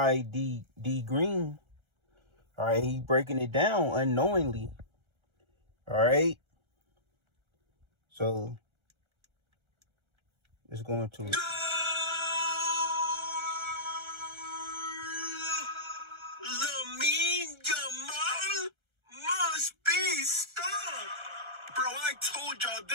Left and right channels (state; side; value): late; left; 1.3 ms